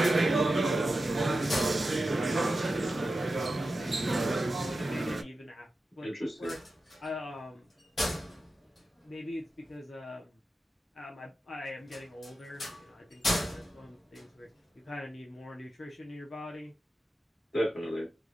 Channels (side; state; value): both; normal; correlation 0.92